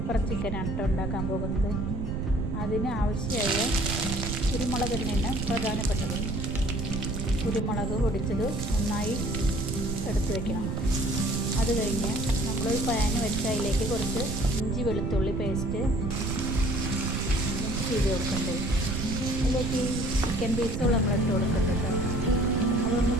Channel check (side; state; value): right; noise; rumble, 2 dB below the sound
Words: ചിക്കനാണ് ഉണ്ടാക്കാൻ പോകുന്നത്. അതിന് ആവശ്യമായ കുരുമുളക് തന്നെയാണ് പ്രധാനപ്പെട്ടത്. കുരുമുളക് പൊടിച്ചത് നന്നായി എടുത്തു വയ്ക്കണം. അത് കഴിഞ്ഞ് നമ്മളൊരു പാൻ വെച്ച് അതിലേക്ക് കുറച്ച് ഇഞ്ചി വെളുത്തുള്ളി പേസ്റ്റ് മിക്സ് ചെയ്ത് കൊടുക്കേണ്ടത്. അതിലേക്ക് ചിക്കൻ പീസുകൾ നമ്മൾ ഇട്ട് കൊടുക്കേണ്ടത്. അതൊന്ന്